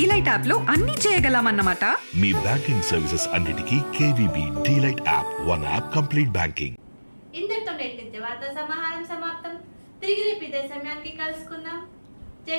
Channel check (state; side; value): inverted; both; correlation -1.00